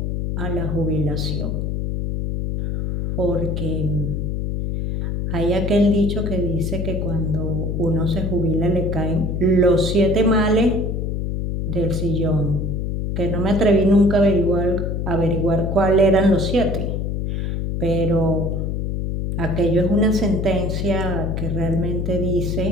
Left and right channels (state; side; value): noise; left; hum, 1 dB below the sound